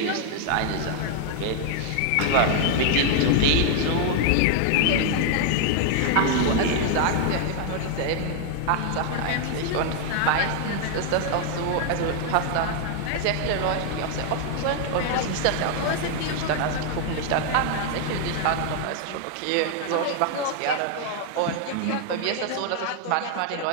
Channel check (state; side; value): different; both; correlation 0.00